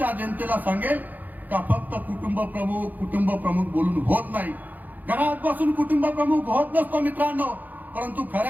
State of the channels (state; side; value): late; left; 0.083 ms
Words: जनतेला सांगेल का फक्त कुटुंब प्रमुख बोलून होत नाही. घरात बसून कुटुंब प्रमुख होत नसतो मित्रांनो, परंतु